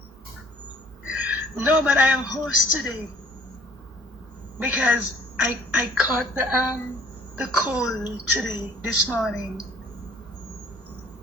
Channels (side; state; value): both; normal; correlation 0.54